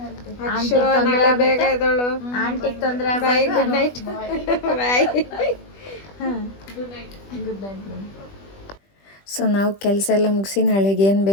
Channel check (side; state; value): right; late; 20 ms